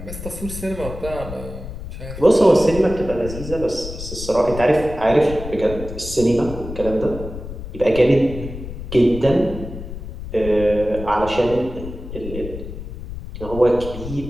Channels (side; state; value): left; noise; rumble, 10 dB below the sound